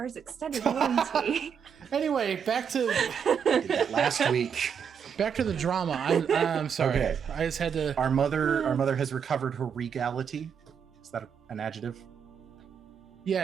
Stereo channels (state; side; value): quieter; left; 7.3 dB